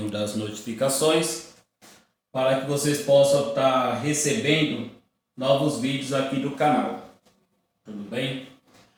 das notificações para que vocês possam estar recebendo novos vídeos aqui do canal. Tudo bem?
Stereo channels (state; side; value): identical; both; correlation 1.00